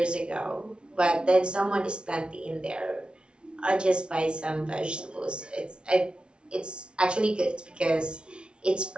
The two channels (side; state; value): left; late; 0.057 ms